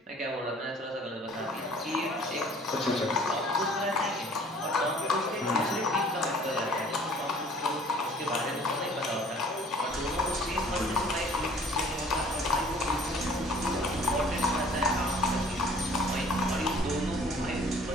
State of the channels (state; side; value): normal; both; correlation 0.53